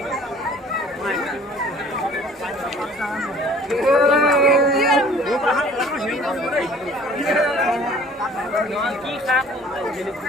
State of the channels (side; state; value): both; normal; correlation 0.51